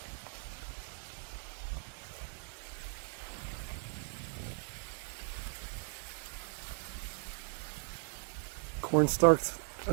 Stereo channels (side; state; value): left; quieter; 39.2 dB